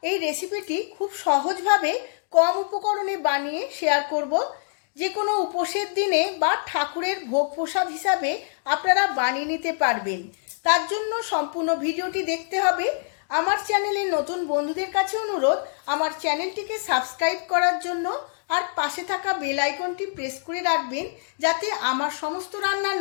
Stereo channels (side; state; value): right; silent; digital silence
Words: এই রেসিপিটি খুব সহজভাবে কম উপকরণে বানিয়ে শেয়ার করব। যে কোনো উপোসের দিনে বা ঠাকুরের ভোগ প্রসাদ হিসাবে আপনারা বানিয়ে নিতে পারবেন। তার জন্য সম্পূর্ণ ভিডিওটি দেখতে হবে। আমার চ্যানেলে নতুন বন্ধুদের কাছে অনুরোধ, আমার চ্যানেলটিকে সাবস্ক্রাইব করার জন্য আর পাশে থাকা বেল আইকনটি প্রেস করে রাখবেন, যাতে আমার সমস্ত রান্নার